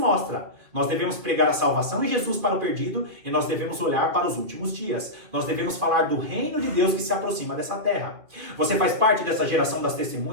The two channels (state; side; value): late; left; 2.5 ms